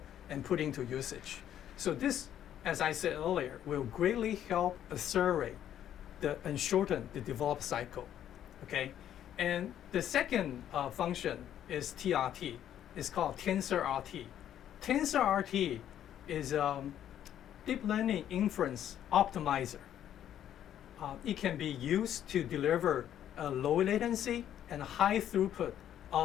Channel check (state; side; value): quieter; right; 10.7 dB